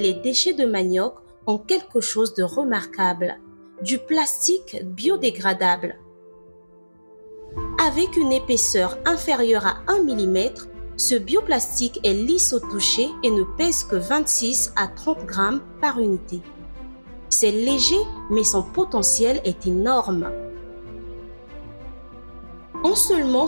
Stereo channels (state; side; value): inverted; both; correlation -1.00